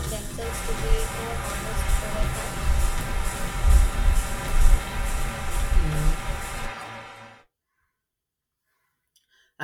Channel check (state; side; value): identical; both; correlation 1.00